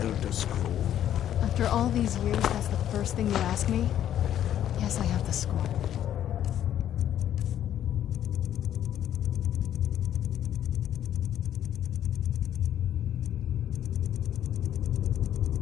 Scroll. After all these years, that's the first thing you ask me? Yes, I have the scroll.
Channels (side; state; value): right; quieter; 10.9 dB